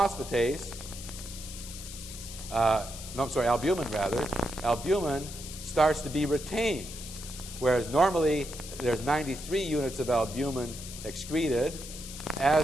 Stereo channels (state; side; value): noise; left; hiss, 12 dB below the sound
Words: starts to be retained, whereas normally there's 93 units of albumin excreted.